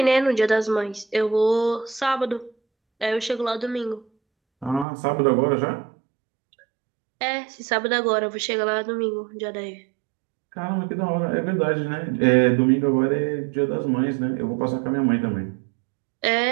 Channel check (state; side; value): drops out; left; at 4.9 s